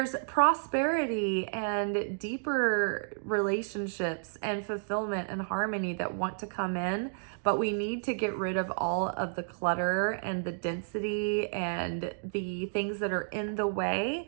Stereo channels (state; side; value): silent; left; digital silence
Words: prosperity and deeper relationships and fulfillment and harmony that want to come in, but we need to get rid of all of the clutter and the density and the things that are in the